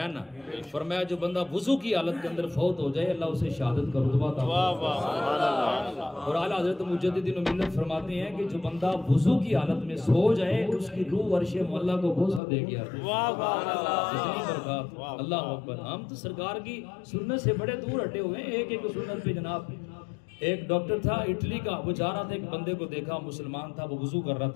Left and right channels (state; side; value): drops out; right; at 12.4 s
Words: نا، فرمایا جو بندہ وضو کی حالت کے اندر فوت ہو جائے اللہ اسے شہادت کا رتبہ عطا فرمائے۔ اور اعلیٰ حضرت مجدد ملت فرماتے ہیں کہ جو بندہ وضو کی حالت میں سو جائے اس کی روح عرش معلیٰ کو بوسہ دے گیا۔ اتنی برکات، اللہ اکبر۔ ہم تو سرکار کی سنت سے بڑے دور ہٹے ہوئے ہیں، ایک ایک سنت پہ جناب۔ ایک ڈاکٹر تھا اٹلی کا، وہ جا رہا تھا، ایک بندے کو دیکھا مسلمان تھا، وہ وضو کر رہا